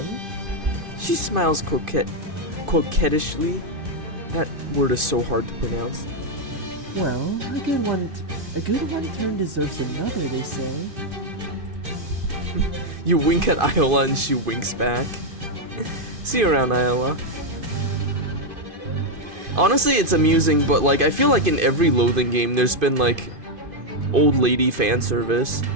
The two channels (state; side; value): late; left; 2.5 ms